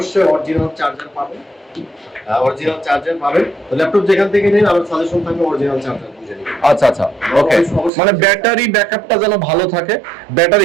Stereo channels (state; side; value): drops out; left; at 7.9 s